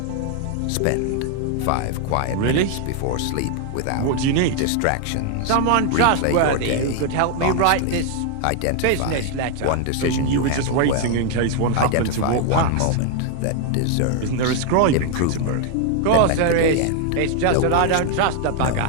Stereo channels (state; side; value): different; both; correlation 0.00